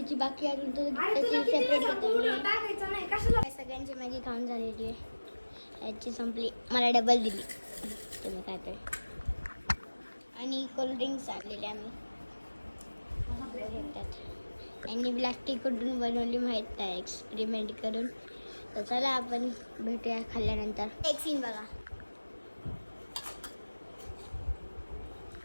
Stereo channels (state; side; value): inverted; both; correlation -1.00